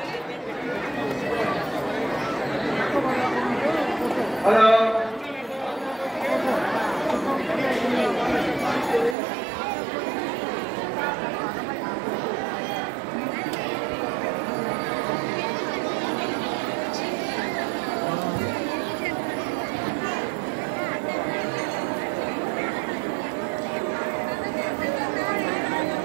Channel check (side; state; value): left; drops out; at 9.2 s